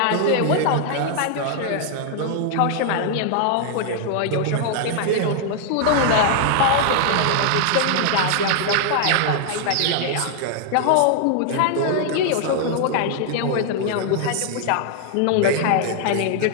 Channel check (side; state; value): both; different; correlation 0.00